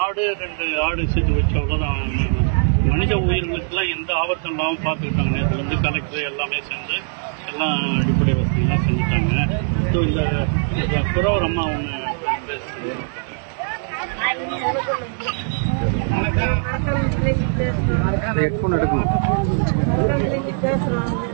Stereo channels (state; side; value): silent; left; digital silence